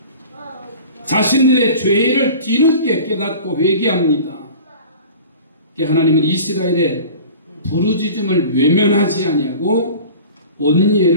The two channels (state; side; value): inverted; both; correlation -0.40